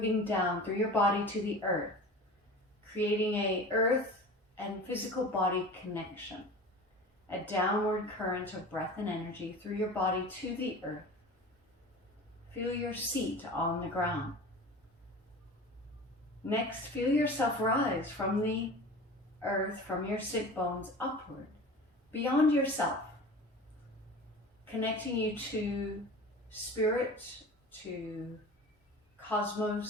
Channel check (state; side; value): normal; both; correlation 0.37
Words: down through your body to the earth, creating a earth and physical body connection. A downward current of breath and energy through your body to the earth. Feel your seat on the ground. Next, feel yourself rise from the earth, from your sit bones upward, beyond yourself, connecting you to spirit, to